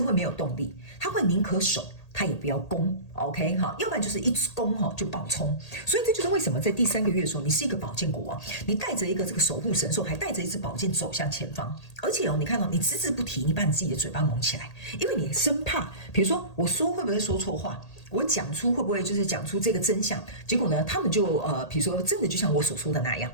会没有动力，他会宁可守。他也不要攻 ，OK 哈，要不然就是一攻哈就爆冲，所以这就是为什么在第3个月的时候，你是一个宝剑国王，你带着一个这个守护神兽，还带着一支宝剑走向前方，而且哦，你看到你只字不提，你把你自己的嘴巴蒙起来，因为你生怕，比如说我说会不会说错话，我讲出会不会就是讲出这个真相，结果呢，他们就比如说真的就像我所说的那样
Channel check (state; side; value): late; right; 1.8 ms